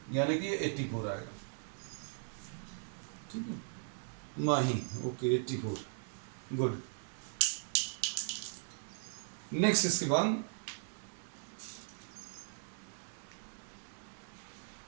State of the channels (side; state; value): left; silent; digital silence